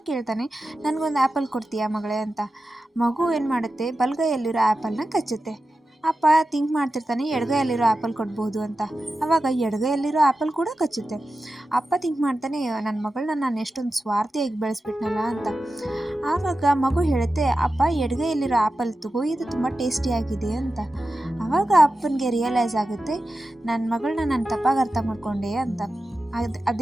ಕೇಳ್ತಾನೆ, ನನಗೊಂದು ಆ್ಯಪಲ್ ಕೊಡ್ತೀಯಾ ಮಗಳೇ ಅಂತ. ಮಗು ಏನು ಮಾಡುತ್ತೆ, ಬಲಗೈಯಲ್ಲಿರೋ ಆ್ಯಪಲ್ನ ಕಚ್ಚುತ್ತೆ. ಅಪ್ಪ ಥಿಂಕ್ ಮಾಡ್ತಿರ್ತಾನೆ, ಎಡಗೈಯಲ್ಲಿರೋ ಆ್ಯಪಲ್ ಕೊಡ್ಬೋದು ಅಂತ. ಆವಾಗ ಎಡಗೈಯಲ್ಲಿರೋ ಆ್ಯಪಲ್ ಕೂಡ ಕಚ್ಚುತ್ತೆ. ಅಪ್ಪ ಥಿಂಕ್ ಮಾಡ್ತಾನೆ, ನನ್ನ ಮಗಳನ್ನ ನಾನು ಎಷ್ಟೊಂದು ಸ್ವಾರ್ಥಿಯಾಗಿ ಬೆಳೆಸ್ಬಿಟ್ನಲ್ಲ ಅಂತ. ಆವಾಗ ಮಗು ಹೇಳುತ್ತೆ, ಅಪ್ಪ ಎಡಗೈಯಲ್ಲಿರೋ ಆ್ಯಪಲ್ ತಗೋ, ಇದು ತುಂಬ ಟೇಸ್ಟಿಯಾಗಿದೆ ಅಂತ. ಆವಾಗ ಅಪ್ಪನಿಗೆ ರಿಯಲೈಸ್ ಆಗುತ್ತೆ, ನನ್ನ ಮಗಳನ್ನ ನಾನು ತಪ್ಪಾಗಿ ಅರ್ಥ ಮಾಡ್ಕೊಂಡೆ ಅಂತ.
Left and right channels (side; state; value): both; normal; correlation 0.92